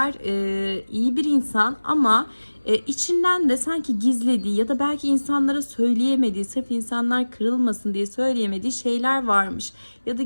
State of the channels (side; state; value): both; inverted; correlation -1.00